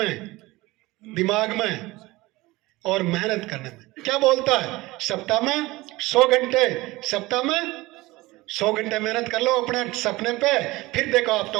दिमाग में और मेहनत करने में। क्या बोलता है? सप्ताह में 100 घंटे, सप्ताह में 100 घंटे मेहनत कर लो अपने सपने पे, फिर देखो आप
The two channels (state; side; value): quieter; left; 20.3 dB